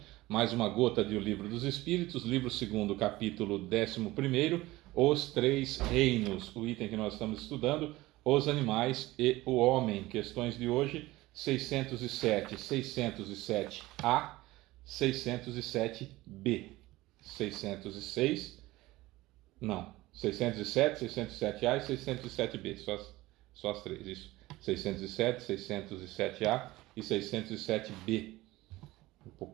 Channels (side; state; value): left; quieter; 18.7 dB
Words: mais uma gota de O Livro dos Espíritos, livro 2º, capítulo 11º, Os Três Reinos, o item que nós estamos estudando, os animais e o homem. Questões de hoje, 607, 607A, 607B, 606, não, 607, 607A e 607B, só as três, isso. 607, 607A e 607B. Um